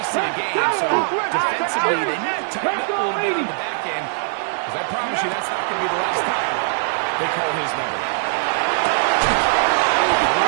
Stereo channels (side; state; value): left; silent; digital silence